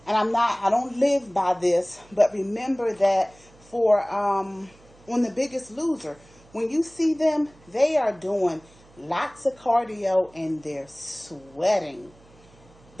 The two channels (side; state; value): right; noise; hum, 27 dB below the sound